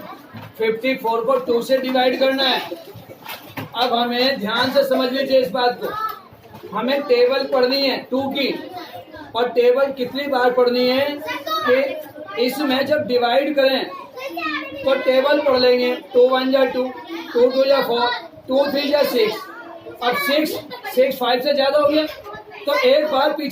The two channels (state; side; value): identical; both; correlation 1.00